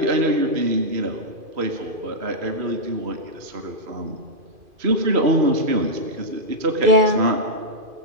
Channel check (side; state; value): left; late; 2.5 ms